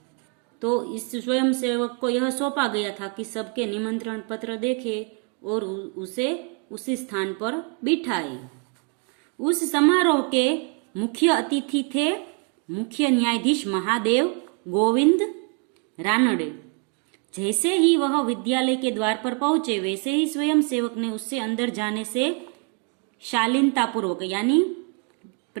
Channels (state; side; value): quieter; left; 36.3 dB